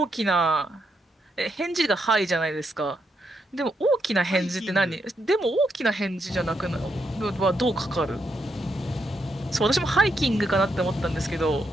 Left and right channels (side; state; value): both; normal; correlation 0.80